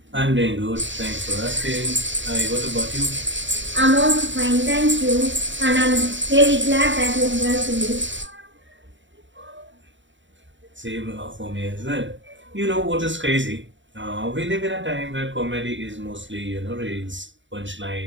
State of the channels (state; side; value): late; left; 0.54 ms